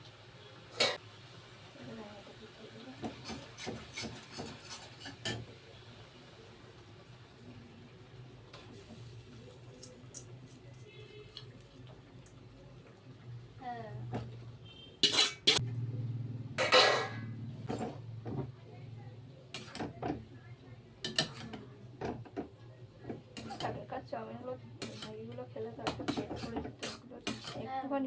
হ্যাঁ চাউমিনগুলো ম্যাগিগুলো খেলে তো একটা পেট করে যেত,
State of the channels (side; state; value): both; identical; correlation 1.00